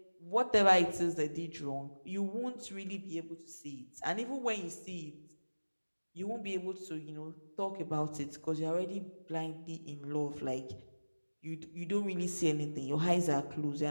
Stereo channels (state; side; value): inverted; both; correlation -1.00